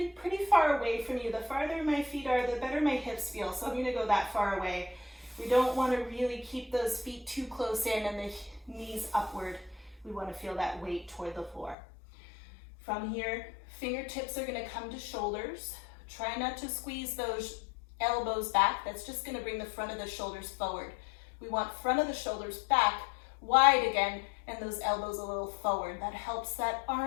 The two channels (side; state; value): right; drops out; at 11.8 s